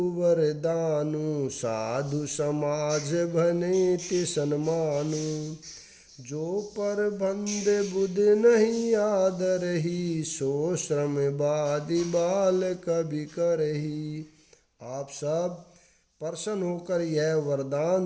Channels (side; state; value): both; identical; correlation 1.00